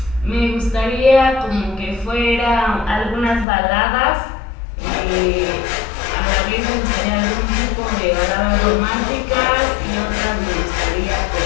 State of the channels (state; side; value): drops out; right; at 3.5 s